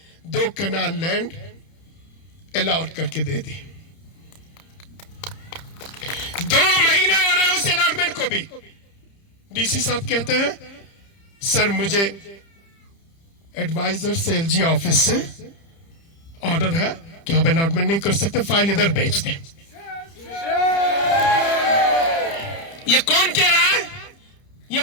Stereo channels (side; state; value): right; late; 30 ms